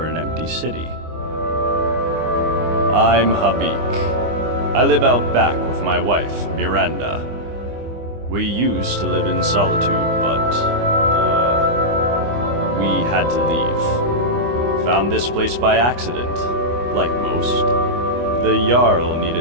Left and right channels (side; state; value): left; late; 25 ms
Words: an empty city. I'm Habik. I live out back with my wife, Miranda. We used to live in solitude, but, we had to leave. Found this place by accident, like most. The Jarl